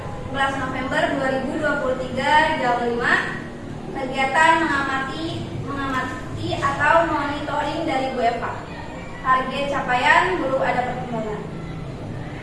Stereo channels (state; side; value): identical; both; correlation 1.00